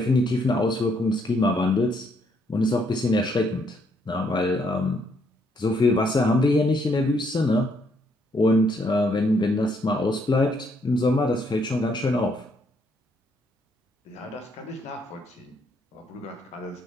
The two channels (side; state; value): both; normal; correlation 0.71